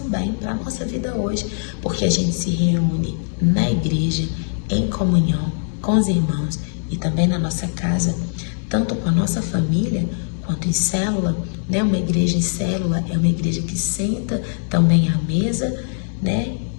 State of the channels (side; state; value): right; silent; digital silence